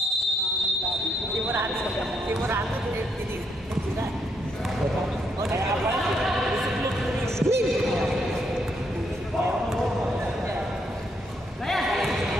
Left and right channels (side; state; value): both; normal; correlation 0.75